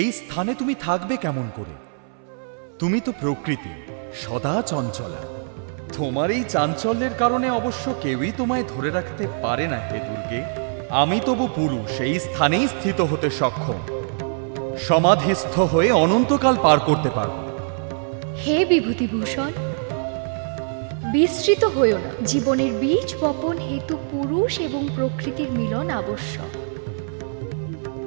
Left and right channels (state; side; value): silent; left; 63 dB below the other